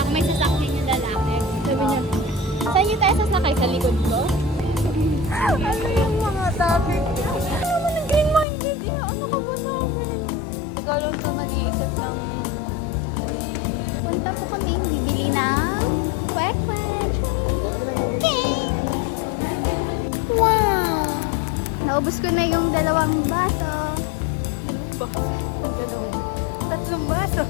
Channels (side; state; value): right; drops out; at 8.5 s